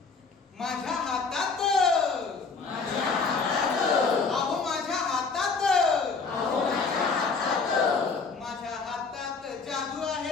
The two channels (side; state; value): right; quieter; 4.7 dB